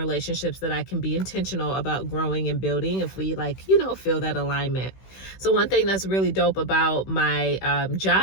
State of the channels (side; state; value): right; late; 16 ms